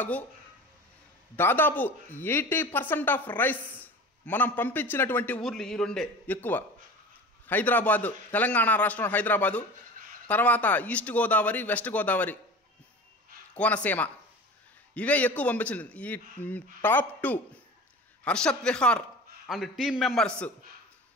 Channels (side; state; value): both; normal; correlation 0.36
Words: దాదాపు 80% ఆఫ్ రైస్ మనం పంపించినటువంటి ఊర్లు ఈ రెండే ఎక్కువ. హైదరాబాదు, తెలంగాణ రాష్ట్రం హైదరాబాదు, తర్వాత ఈస్ట్ గోదావరి, వెస్ట్ గోదావరి, కోనసీమ, ఇవే ఎక్కువ పంపించింది. ఈ top 2 Harshat Vihar and team members